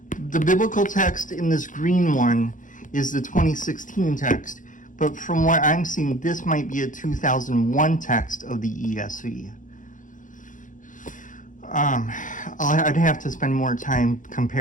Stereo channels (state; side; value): late; right; 0.38 ms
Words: biblical text in this green one is the 2016 text, but from what I'm seeing, this might be a 2001 text of the ESV. I'd have to spend more time